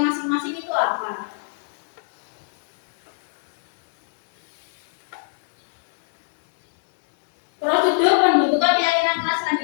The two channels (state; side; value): silent; right; digital silence